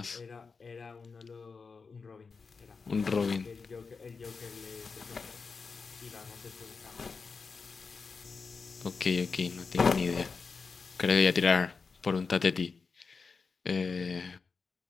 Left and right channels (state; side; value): quieter; right; 4.9 dB